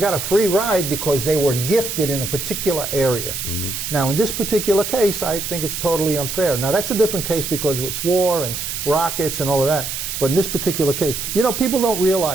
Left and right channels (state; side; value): noise; right; hiss, 5 dB below the sound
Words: a free ride because they were gifted in a particular area. Now, in this particular case, I think it's totally unfair. Now, that's a different case because it's war and rockets and all of that. But in this particular case, you know, people don't